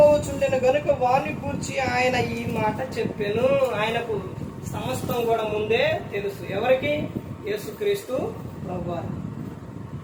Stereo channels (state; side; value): identical; both; correlation 1.00